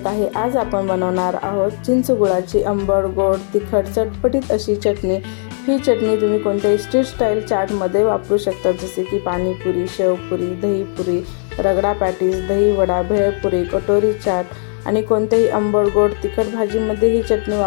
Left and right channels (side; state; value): right; silent; 68 dB below the other